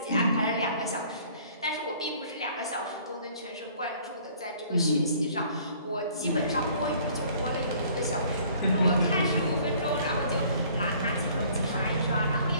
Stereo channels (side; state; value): both; inverted; correlation -0.56